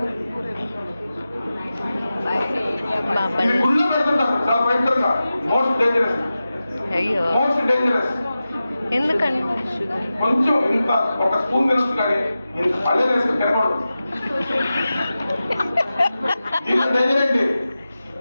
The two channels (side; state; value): both; inverted; correlation -0.94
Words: ఇది గుళ్ళో పెడుతుంటారు చాలా భయంకరంగా. Most dangerous. ఎందుకండి? కొంచెం ఇంత ఒక స్పూన్ తినొచ్చు కానీ ఇంత పల్లెలు వేసుకుని తినకూడదు. దీంట్లో డేంజర్ ఏంటి?